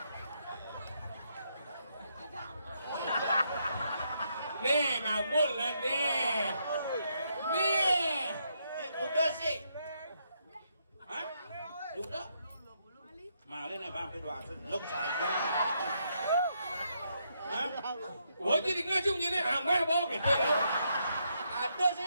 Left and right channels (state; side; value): inverted; both; correlation -0.77